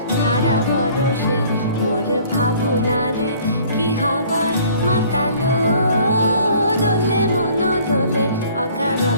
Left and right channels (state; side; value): inverted; both; correlation -0.54